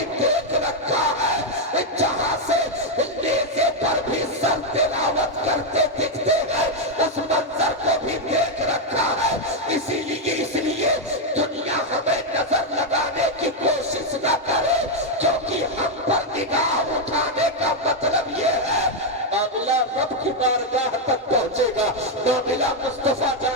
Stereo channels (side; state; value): both; normal; correlation 0.01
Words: دیکھ رکھا ہے، جہاں سے نیزے پر بھی سر تلاوت کرتے دکھتے ہیں اس منظر کو بھی دیکھ رکھا ہے۔ اسی لیے دنیا ہمیں نظر لگانے کی کوشش نہ کرے، کیونکہ ہم پر نگاہ اٹھانے کا مطلب یہ ہے معاملہ رب کی بارگاہ تک پہنچے گا، معاملہ مصطفیٰ